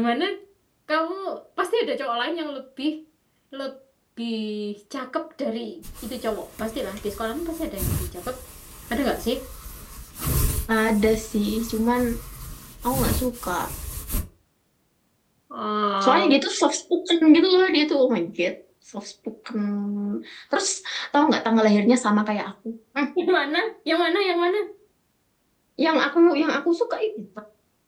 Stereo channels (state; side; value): identical; both; correlation 1.00